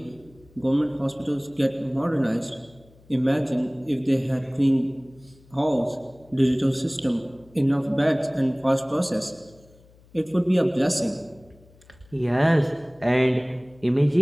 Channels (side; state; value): left; noise; hum, 27 dB below the sound